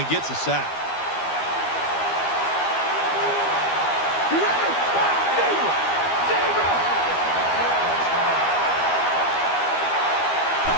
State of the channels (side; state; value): right; late; 12 ms